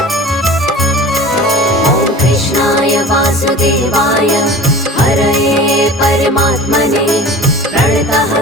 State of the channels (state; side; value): normal; both; correlation 0.39